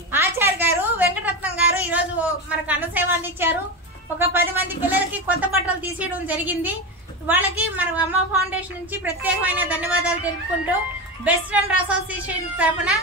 ఆచార్య గారు, వెంకటరత్నం గారు ఈ రోజు మనకు అన్న సేవ అందించారు. ఒక 10 మంది పిల్లలకి కొత్త బట్టలు తీసేయడం జరిగింది. వాళ్ళకి మన అమ్మ ఫౌండేషన్ నుంచి ప్రత్యేకమైన ధన్యవాదాలు తెలుపుకుంటూ బెస్ట్ ఫ్రెండ్ అసోసియేషన్ తరఫున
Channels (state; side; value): normal; both; correlation 0.19